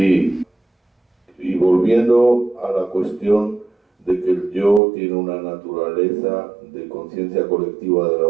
Y volviendo a la cuestión de que el yo tiene una naturaleza de conciencia colectiva de la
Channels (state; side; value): drops out; left; at 4.8 s